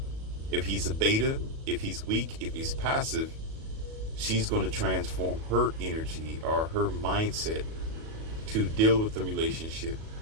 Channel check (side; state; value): left; late; 37 ms